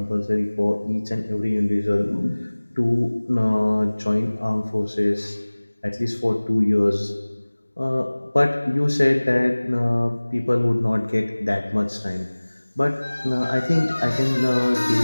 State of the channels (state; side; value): inverted; both; correlation -1.00